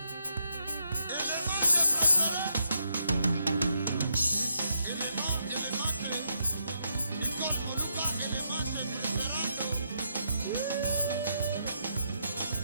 Nicole Moluka, élément préférando.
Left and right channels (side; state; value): both; inverted; correlation -0.79